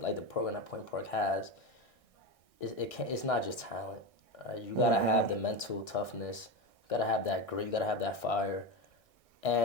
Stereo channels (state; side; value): late; right; 1.6 ms